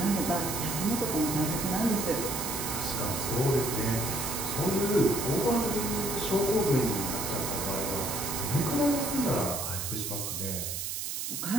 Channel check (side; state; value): right; noise; hiss, 3 dB below the sound